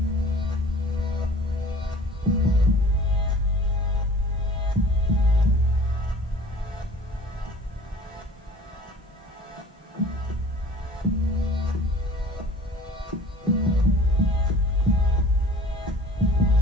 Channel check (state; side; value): normal; both; correlation 0.46